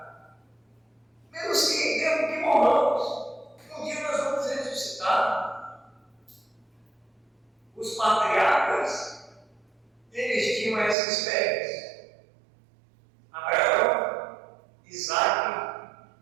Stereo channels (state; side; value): drops out; left; at 11.0 s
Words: Mesmo que morramos, um dia nós vamos ressuscitar. Os patriarcas, eles tinham essa esperança. Abraão, Isaac